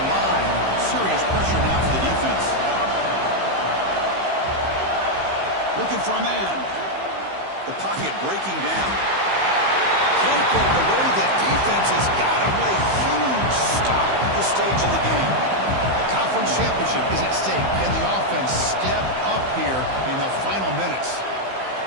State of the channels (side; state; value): left; late; 15 ms